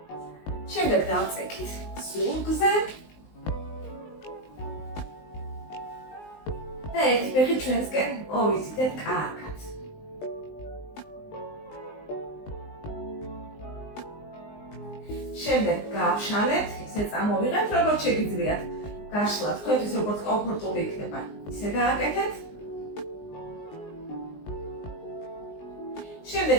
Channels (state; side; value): late; right; 19 ms